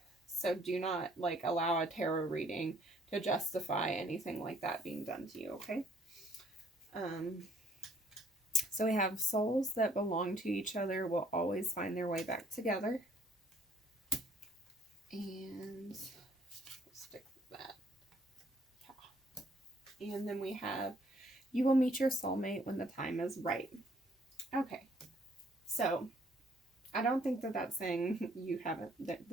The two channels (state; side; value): normal; both; correlation 0.62